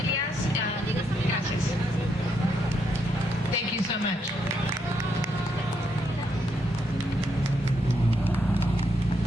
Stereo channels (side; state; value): both; normal; correlation 0.77